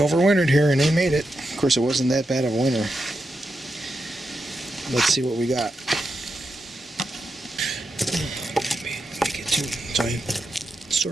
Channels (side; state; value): both; normal; correlation 0.87